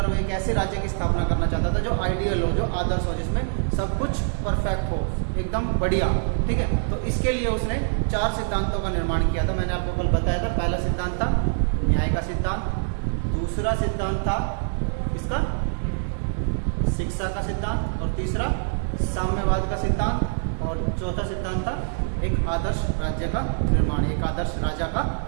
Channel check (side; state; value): left; silent; digital silence